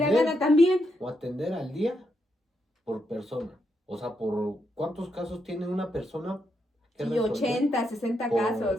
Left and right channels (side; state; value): both; normal; correlation 0.81